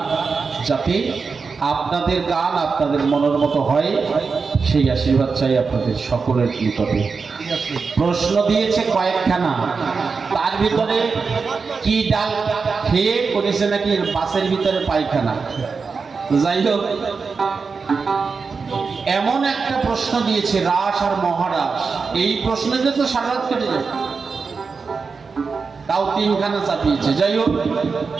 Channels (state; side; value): quieter; left; 4.9 dB